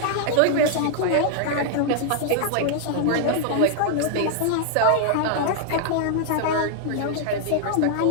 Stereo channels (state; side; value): different; both; correlation 0.00